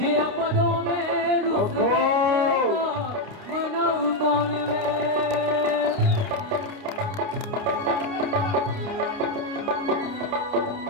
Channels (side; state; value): left; late; 29 ms